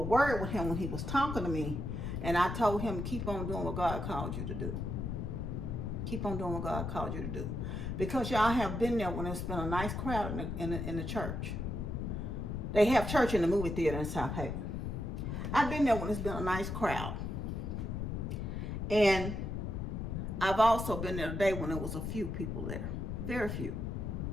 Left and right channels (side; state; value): left; noise; rumble, 3 dB below the sound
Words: word with him when he was talking to me. And I told him, keep on doing what God called you to do. Keep on doing what God called you to do. Because y'all have been there when it's been a nice crowd in the church. They have church in the movie theater in South Haven. I've been there when it's been a nice crowd. And I've also been there today when there was a few people there. Very few.